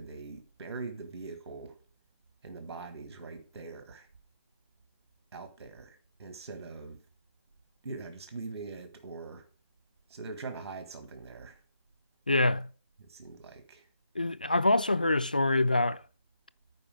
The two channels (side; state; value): both; inverted; correlation -0.80